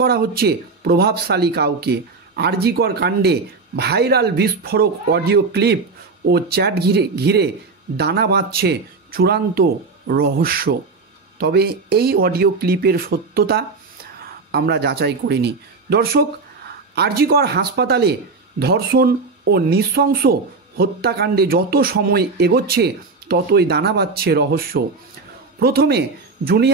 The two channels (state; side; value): quieter; left; 4.2 dB